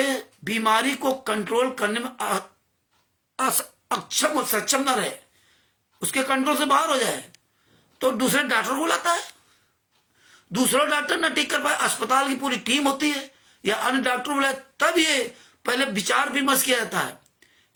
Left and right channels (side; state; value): both; identical; correlation 1.00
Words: बीमारी को कंट्रोल करने में अक्षम और सक्षम न रहे, उसके कंट्रोल से बाहर हो जाए, तो दूसरे डॉक्टर को बुलाता है। दूसरा डॉक्टर न ठीक कर पाए, अस्पताल की पूरी टीम होती है या अन्य डॉक्टर बुलाए, तब ये पहले विचार विमर्श किया जाता है।